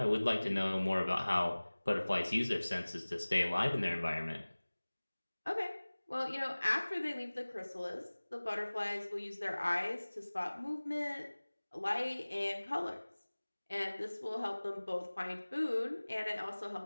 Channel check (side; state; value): both; inverted; correlation -1.00